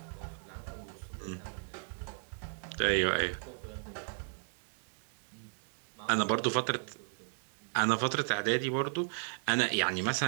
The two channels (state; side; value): silent; left; 55 dB below the other